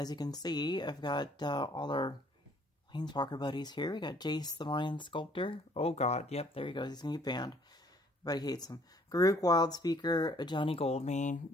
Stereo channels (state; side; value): normal; both; correlation 0.61